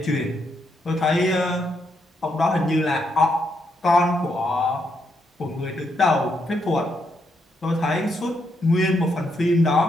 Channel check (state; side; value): normal; both; correlation 0.78